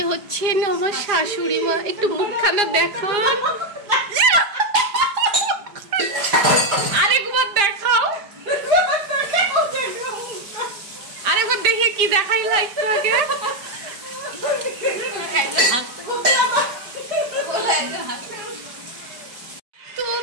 হচ্ছে আমার শাশুড়ি মা। একটু মুখখানা দেখান, আরেকবার দেখাও, আরেকবার দেখে কি দেখাইলা একটু আগে। তো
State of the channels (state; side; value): late; left; 4.9 ms